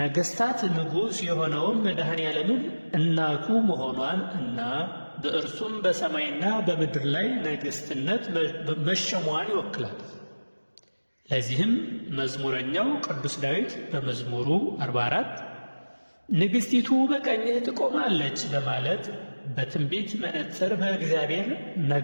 ንጉሥ የሆነውን መድኃኔ ዓለምን እናቱ መሆኗን እና በእርሱም በሰማይና በምድር ላይ ነገሥትነት መሸሟን ይወክላል። ለዚህም መዝሙረኛው ቅዱስ ዳዊት በመዝሙሩ 44 ንግሥቲቱ በቀኝህ ትቆማለች በማለት በትንቢት መነጽር በእግዚአብሔር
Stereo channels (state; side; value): inverted; both; correlation -1.00